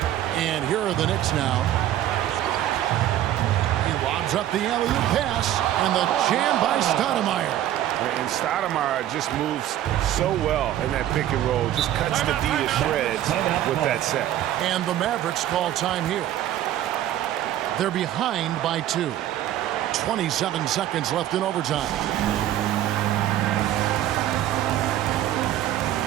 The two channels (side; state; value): left; quieter; 12.5 dB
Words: And here are the Knicks now. He lobs up the alley-oop pass. And the jam by Stoudemire. And Stoudemire just moves so well in that pick and roll. Just cuts the D to shreds with that set. And the Mavericks call time here. They're behind by 2. 27 seconds left in overtime.